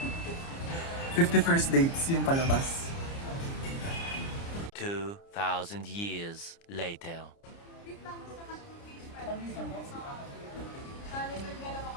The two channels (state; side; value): late; right; 30 ms